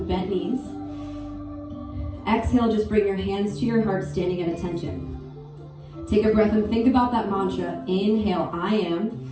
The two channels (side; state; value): both; identical; correlation 1.00